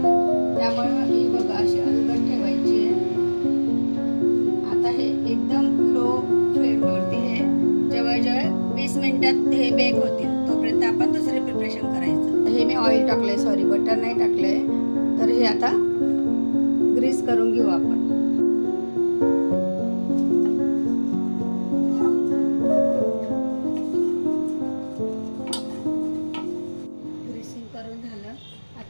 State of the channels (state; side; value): inverted; both; correlation -1.00